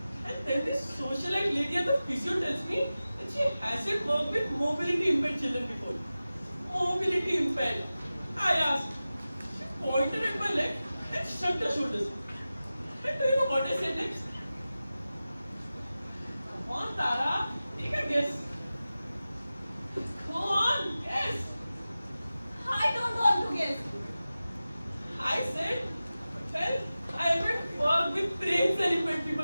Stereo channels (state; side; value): inverted; both; correlation -0.95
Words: And then this socialite lady at the physio tells me that she hasn't worked with mobility impaired children before. Mobility impaired. I asked. She pointed at my leg and shrugged her shoulders. And do you know what I said next? Come on, Tara. Take a guess. Go on, guess. I don't want to guess. I said, well, I haven't worked with brains and impaired